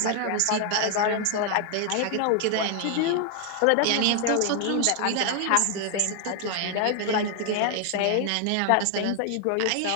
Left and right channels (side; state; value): both; different; correlation 0.00